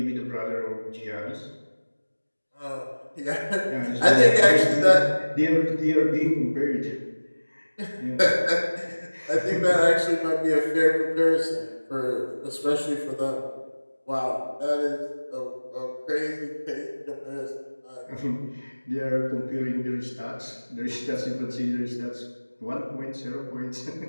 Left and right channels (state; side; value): inverted; both; correlation -1.00